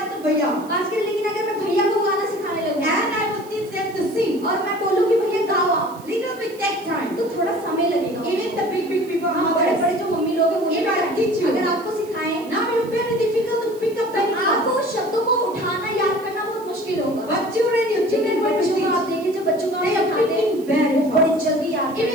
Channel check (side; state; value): right; noise; hiss, 23 dB below the sound